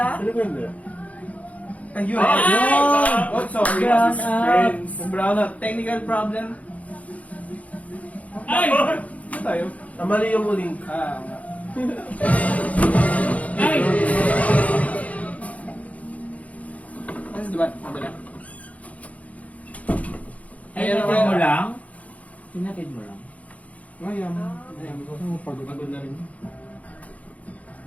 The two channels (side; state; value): right; late; 0.069 ms